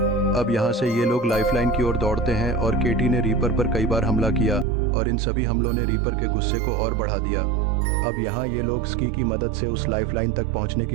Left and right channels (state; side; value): drops out; left; at 4.7 s